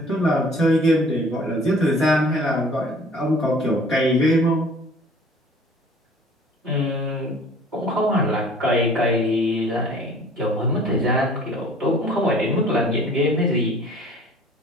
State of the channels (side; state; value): both; normal; correlation 0.50